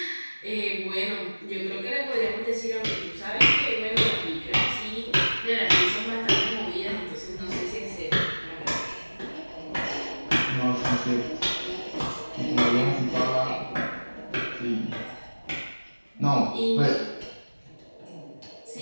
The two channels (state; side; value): inverted; both; correlation -1.00